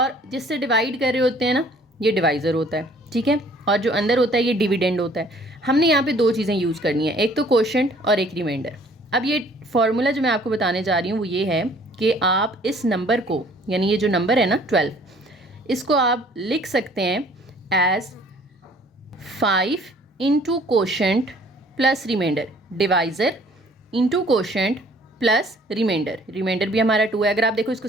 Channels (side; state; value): both; normal; correlation 0.56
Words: जिससे डिवाइड कर रहे होते हैं ना ये डिवाइज़र होता है, ठीक है, और जो अंदर होता है ये डिविडेंड होता है। हमने यहाँ पे 2 चीज़ें यूज़ करनी है, एक तो कोशेंट और एक रिमाइंडर। अब ये फॉर्मूला जो मैं आपको बताने जा रही हूँ वो ये है कि आप इस नंबर को, यानी ये जो नंबर है ना 12, इसको आप लिख सकते हैं as 5 into quotient plus remainder, divisor into quotient plus remainder, remainder भी हमारा 2 है। अगर आप देखो